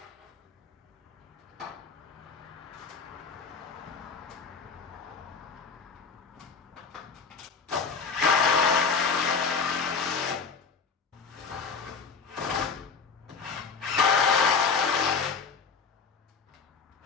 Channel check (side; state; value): right; quieter; 5.4 dB